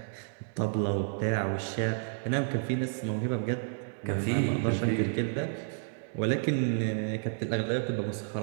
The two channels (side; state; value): left; silent; digital silence